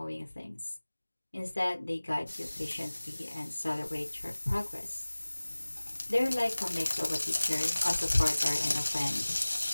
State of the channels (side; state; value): both; inverted; correlation -1.00